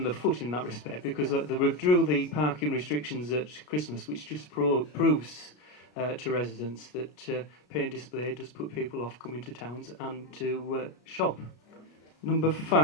the foot in that respect, because they withdrew the parking restrictions at Christmas, which just proves to residents that pay and display does put people off coming to towns and to shop. Number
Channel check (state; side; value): late; right; 33 ms